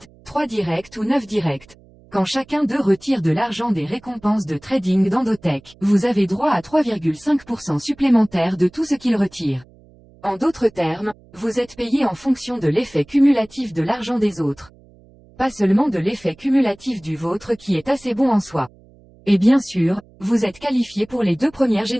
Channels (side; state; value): right; noise; hum, 27 dB below the sound